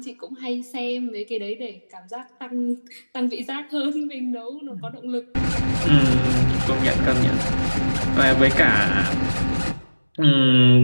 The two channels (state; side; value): inverted; both; correlation -1.00